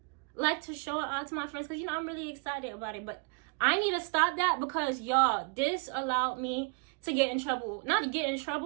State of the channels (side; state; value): left; quieter; 34.4 dB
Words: like to show it out to my friends because, you know, I'm really excited about it. But I need to stop that because, y'all, this allowed me to get in trouble. Not to get in